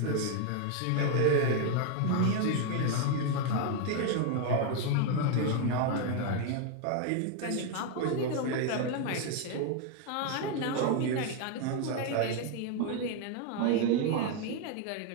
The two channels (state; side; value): different; both; correlation 0.01